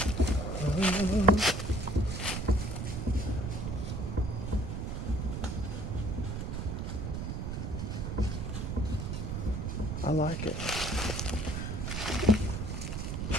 I like it.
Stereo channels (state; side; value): noise; right; rumble, 3 dB below the sound